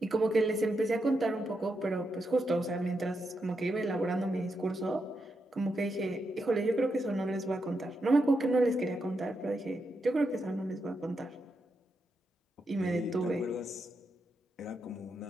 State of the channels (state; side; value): normal; both; correlation 0.84